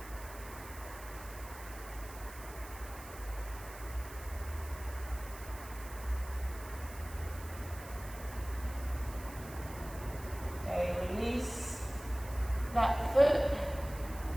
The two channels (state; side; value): noise; right; hiss, 16 dB below the sound